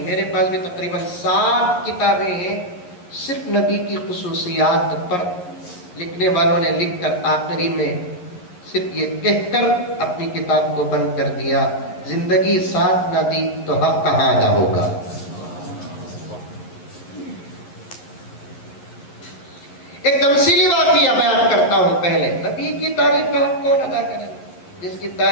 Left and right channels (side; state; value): right; late; 11 ms